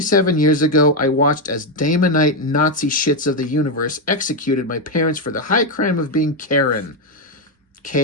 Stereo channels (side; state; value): both; normal; correlation 0.05